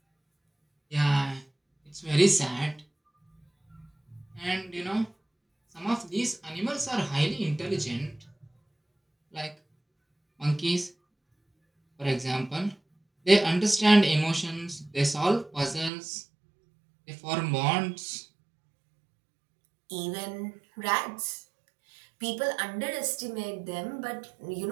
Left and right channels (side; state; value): left; drops out; at 15.9 s